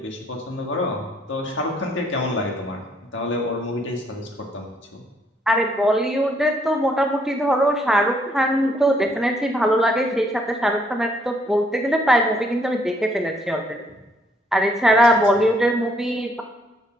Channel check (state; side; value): normal; both; correlation 0.68